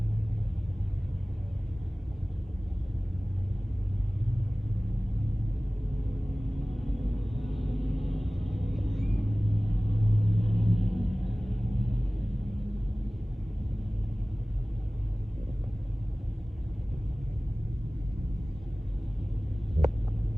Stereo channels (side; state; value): both; normal; correlation 0.98